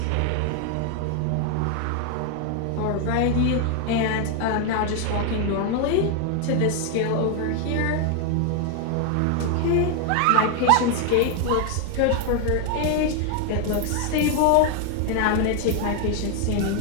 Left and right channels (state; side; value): different; both; correlation 0.00